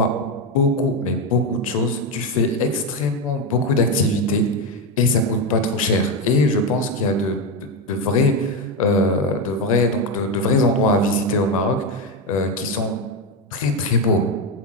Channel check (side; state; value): both; normal; correlation 0.10